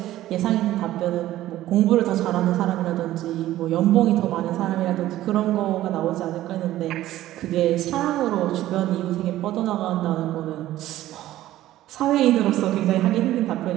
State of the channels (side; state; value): left; quieter; 14.5 dB